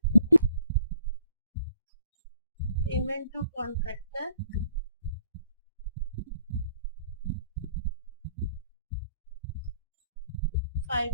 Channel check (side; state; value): both; inverted; correlation -0.58